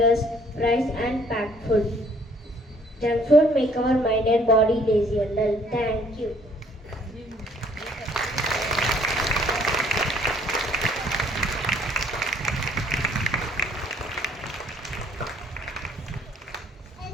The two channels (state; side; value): normal; both; correlation 0.61